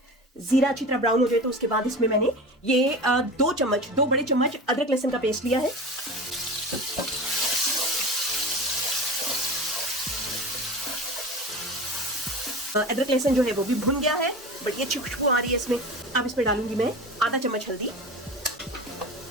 जीरा अच्छी तरह ब्राउन हो जाए तो उसके बाद इसमें मैंने ये 2 बड़े चम्मच अदरक लहसुन का पेस्ट लिया है। अदरक लहसुन जो है वो भी भुन गया है, बट ये अच्छी खुशबू आ रही है इसमें। अब इसमें डालूंगी मैं आधा चम्मच हल्दी।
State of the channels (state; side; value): normal; both; correlation 0.32